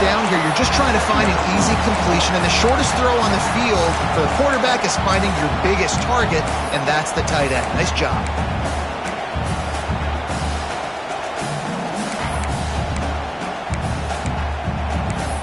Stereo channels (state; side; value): identical; both; correlation 1.00